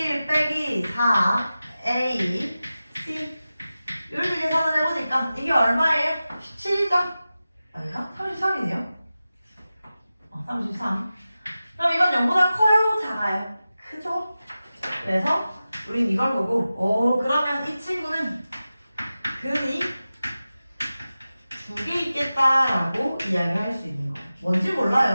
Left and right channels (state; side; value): inverted; both; correlation -0.95